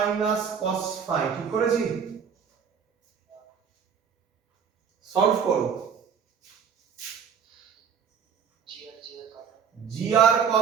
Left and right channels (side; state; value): left; quieter; 7.1 dB